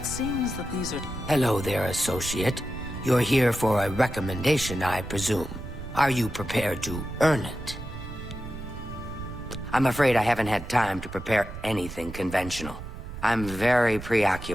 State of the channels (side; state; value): right; noise; rumble, 10 dB below the sound